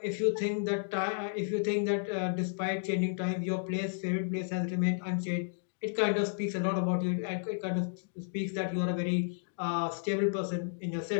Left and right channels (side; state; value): right; silent; digital silence